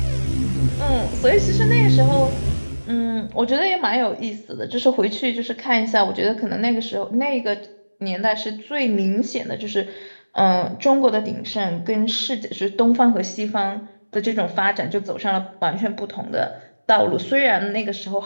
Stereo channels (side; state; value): both; inverted; correlation -1.00